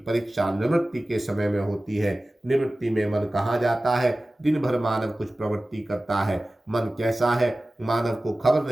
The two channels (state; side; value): normal; both; correlation 0.96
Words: निवृत्ति के समय में होती है। निवृत्ति में मन कहाँ जाता है? दिन भर मानव कुछ प्रवृत्ति करता है। मन कैसा है, मानव को खबर